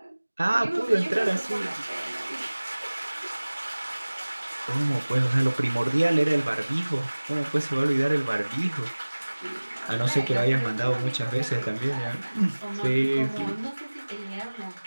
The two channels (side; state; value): both; inverted; correlation -1.00